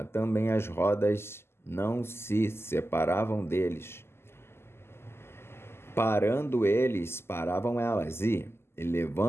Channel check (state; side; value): late; right; 0.12 ms